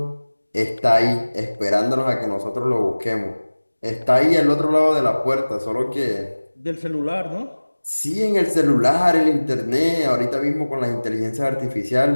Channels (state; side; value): inverted; both; correlation -1.00